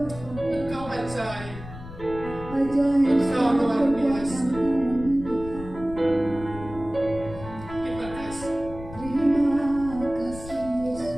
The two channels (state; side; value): noise; left; rumble, 13 dB below the sound